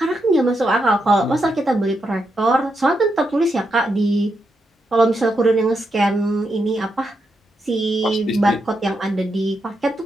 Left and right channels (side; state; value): both; normal; correlation 0.83